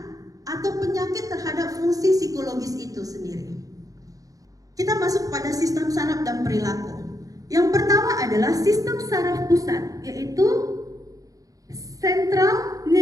atau penyakit terhadap fungsi psikologis itu sendiri. Kita masuk pada sistem saraf dan perilaku. Yang pertama adalah sistem saraf pusat, yaitu central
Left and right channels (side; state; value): left; late; 0.17 ms